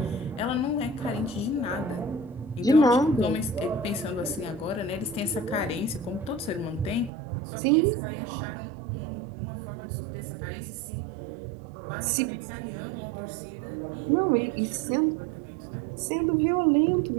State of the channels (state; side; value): drops out; left; at 7.1 s